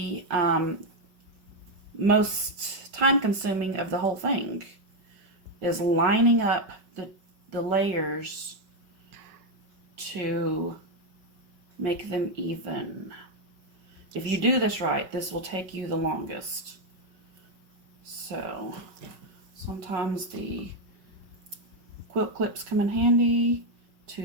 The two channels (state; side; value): late; left; 5.3 ms